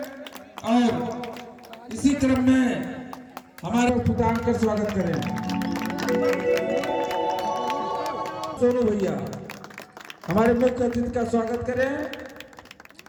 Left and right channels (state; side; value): identical; both; correlation 1.00